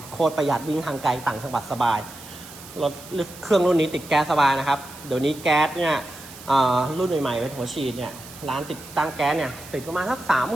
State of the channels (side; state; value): right; noise; hiss, 17 dB below the sound